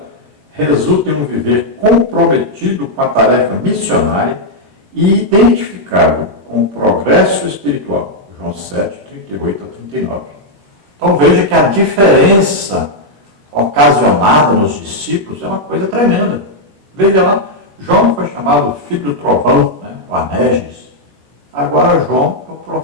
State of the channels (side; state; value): left; late; 20 ms